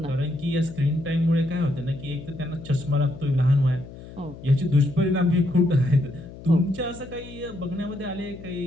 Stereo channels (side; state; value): left; noise; hum, 16 dB below the sound